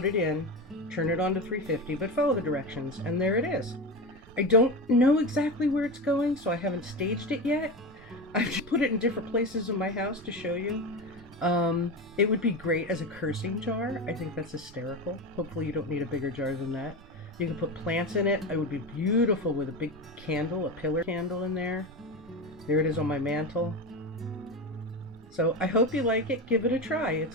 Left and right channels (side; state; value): right; noise; rumble, 25 dB below the sound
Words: it in. Turn it on to 350, but follow the directions, and there it is. I don't know exactly where it's going, so I haven't staged it yet. I've just put it in different places in my house to show you. It would be great as a cursing jar. I think that's hysterical. Hopefully you don't need a bigger jar than that. You can put plants in it. It would be beautiful with a big candle, a pillar candle in there. There it is on my mantle. So I hope you like it. Give it a try.